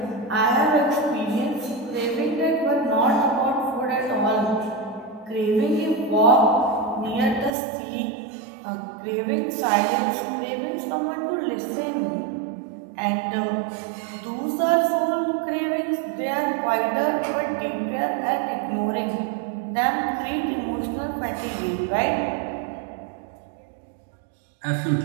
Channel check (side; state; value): left; drops out; at 7.5 s